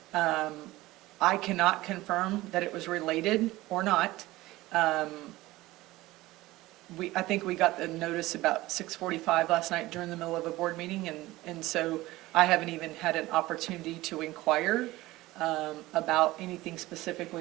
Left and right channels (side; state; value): left; quieter; 18.3 dB